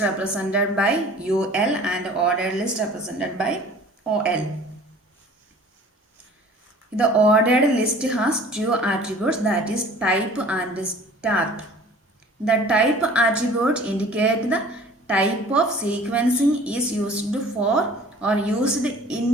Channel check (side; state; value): both; normal; correlation 0.47